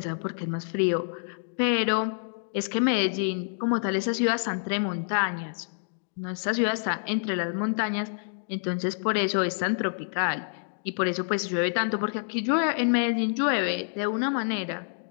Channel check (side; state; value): right; silent; digital silence